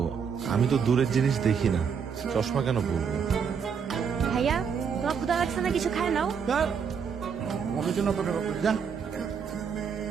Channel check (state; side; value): quieter; left; 6.7 dB